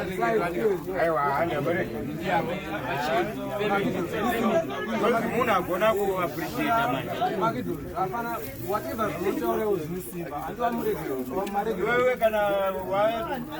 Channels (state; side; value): noise; right; rumble, 27 dB below the sound